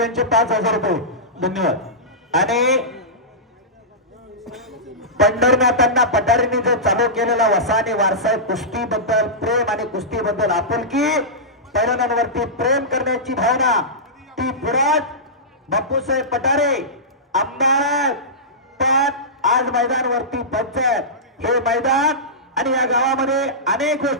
5000 रुपये. धन्यवाद. आणि पंढरनाथांना पठारींनी जो चालू केलेला वसा आणि वारसा कुस्तीबद्दल प्रेम आणि कुस्तीबद्दल आपुलकी, पैलवानांवरती प्रेम करण्याची भावना, ती पुरात बापूसाहेब पठारे आमदार पण आज मैदानावरती पंचायत हे मैदान आणि या गावामध्ये अनेक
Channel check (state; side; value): normal; both; correlation -0.16